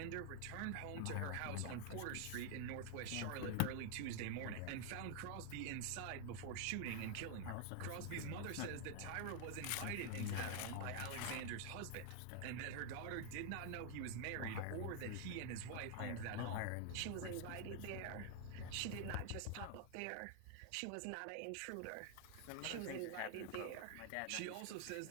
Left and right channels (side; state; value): both; different; correlation 0.00